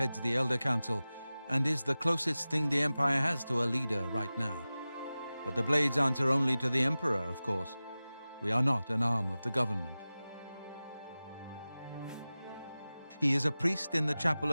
the Elder Council and is the closest thing the Empire has to a leader right now. But the Blades answer only to the Emperor, of course. We are not an arm of the government. He is a priest in the chapel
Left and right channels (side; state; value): both; inverted; correlation -0.96